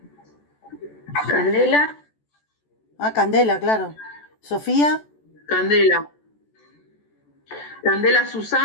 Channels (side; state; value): right; late; 14 ms